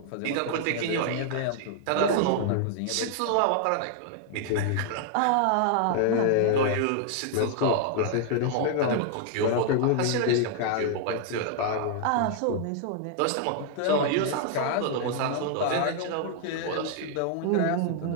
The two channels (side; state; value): both; different; correlation 0.00